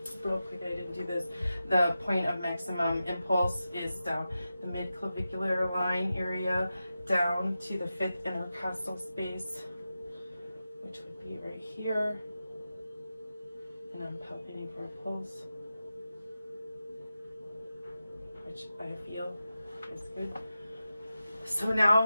real quick, I didn't do this. The point of maximum impulse is down the mid-clavicular line area, down to the fifth intercostal space, which would be right here. And I'm palpating for a pulse, which I feel is good. So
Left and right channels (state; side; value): inverted; both; correlation -0.92